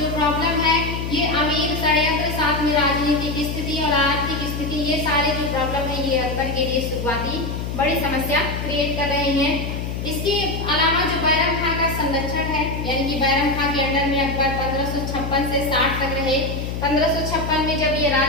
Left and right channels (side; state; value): left; noise; hum, 4 dB below the sound